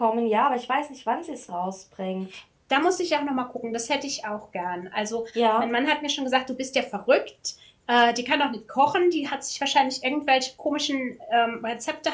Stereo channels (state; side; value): identical; both; correlation 1.00